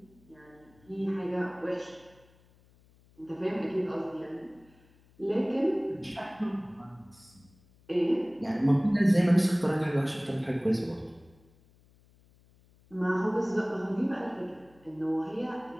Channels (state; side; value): noise; left; hum, 29 dB below the sound